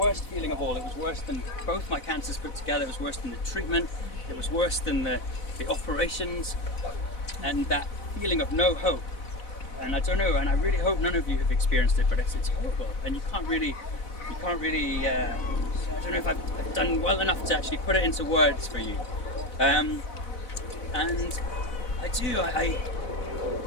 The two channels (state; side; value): late; right; 4.0 ms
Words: feeling of all. It was worse than both my cancers put together. It was worse than the treatment. It was worse than the operations, and that feeling of no hope. And I don't know, and I really hope none of you have experienced it, but it's horrible, and you can't really. I don't know if I've done well enough to actually put it into words for you. And I do.